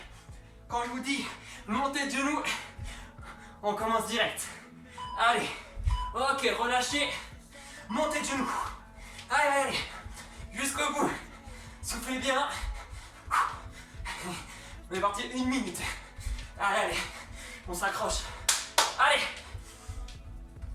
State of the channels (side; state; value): both; identical; correlation 1.00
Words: Quand je vous dis montée de genoux, on commence direct. Allez. Ok, relâchez. Montée de genoux. Allez, allez, allez. Jusqu'au bout. Soufflez bien. On est parti 1 minute. Allez, allez. On s'accroche. Allez.